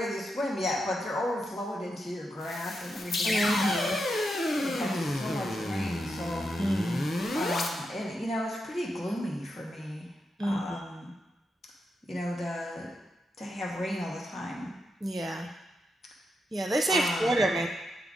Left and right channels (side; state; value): both; normal; correlation 0.85